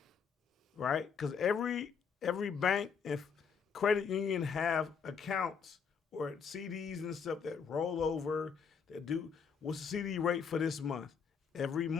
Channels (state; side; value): quieter; right; 6.3 dB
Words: right? Because every bank and credit union have accounts or CDs and stuff that roll over, that do, what's the CD rate for this month? Every